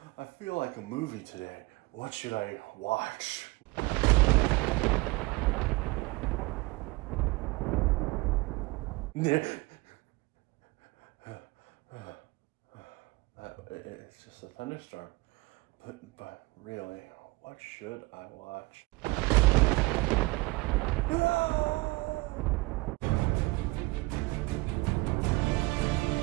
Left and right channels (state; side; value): quieter; left; 23.5 dB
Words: feel like a movie today. What should I watch? It's just a thunderstorm. But really, what should I watch?